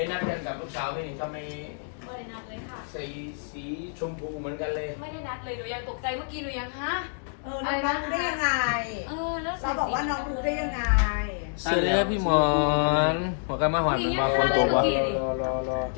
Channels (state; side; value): silent; right; digital silence